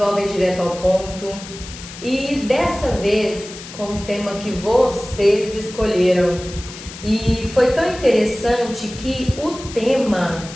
Direto ao Ponto e dessa vez com um tema que vocês escolheram. E foi tão interessante que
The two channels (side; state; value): left; noise; hiss, 14 dB below the sound